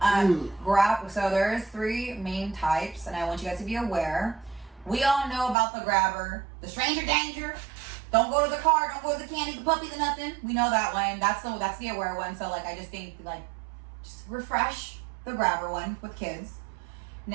So there's three main types, and I want you guys to be aware. We all know about the grabber, the stranger danger. Don't go to the car, don't go to the candy, the puppy, the nothing. We know that one. That's the aware one. So like I just think like just refresh the grabber one with kids.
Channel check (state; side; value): drops out; left; at 5.6 s